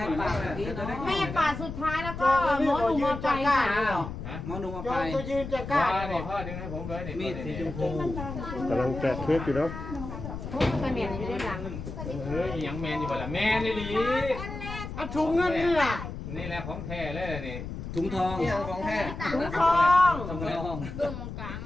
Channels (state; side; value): noise; left; rumble, 8 dB below the sound